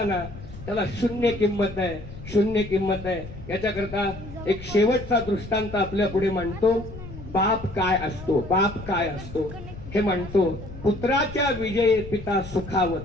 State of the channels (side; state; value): left; noise; rumble, 13 dB below the sound